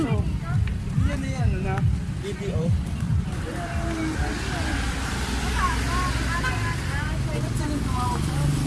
Yan na yan, na. BDO.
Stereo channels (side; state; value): both; identical; correlation 1.00